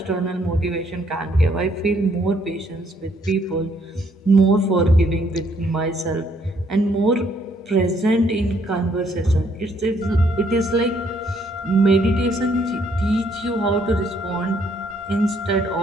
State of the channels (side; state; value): both; normal; correlation 0.68